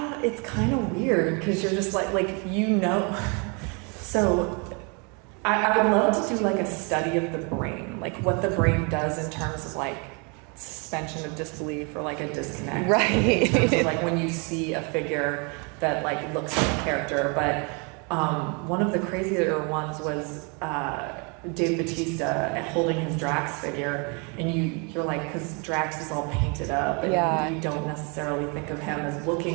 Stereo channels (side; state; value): left; quieter; 33.6 dB